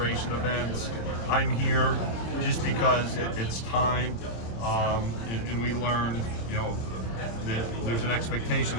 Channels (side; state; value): right; late; 26 ms